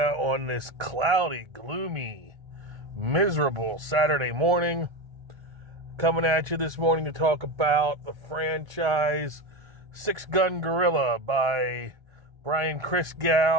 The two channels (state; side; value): late; left; 1.3 ms